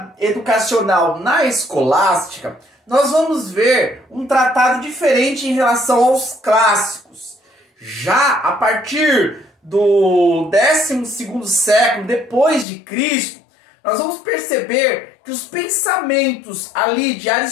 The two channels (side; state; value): right; drops out; at 12.7 s